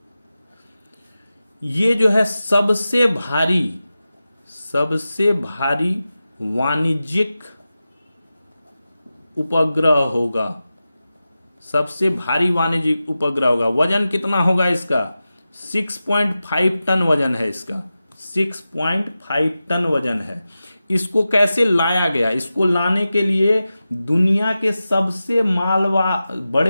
ये जो है सबसे भारी वाणिज्यिक उपग्रह होगा। वजन कितना होगा इसका? 6.5 टन वजन है इसका। 6.5 टन वजन है। इसको कैसे लाया गया? इसको लाने के लिए दुनिया के सबसे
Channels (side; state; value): both; inverted; correlation -0.93